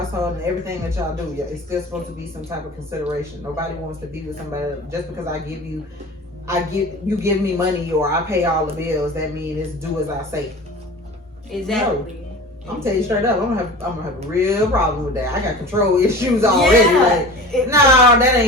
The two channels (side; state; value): both; normal; correlation 0.37